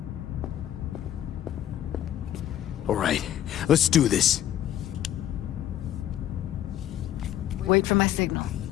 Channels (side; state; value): right; quieter; 11.7 dB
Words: All right, let's do this. Wait for my signal.